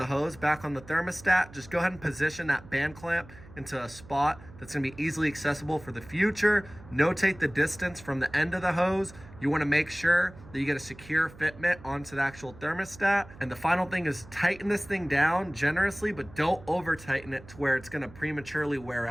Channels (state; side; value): noise; right; hum, 20 dB below the sound